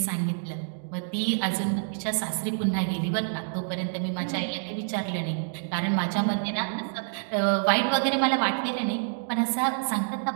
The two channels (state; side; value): silent; left; digital silence